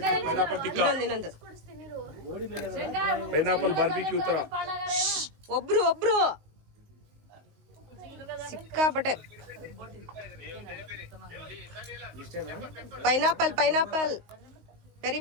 ಇನ್ನೊಂದು ಪೈನಾಪಲ್ ಬಾರ್ಬಿಕ್ಯೂ ತರ ಒಬ್ರು ಸಿಕ್ಕಾಪಟ್ಟೆ ಪೈನಾಪಲ್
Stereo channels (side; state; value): left; late; 19 ms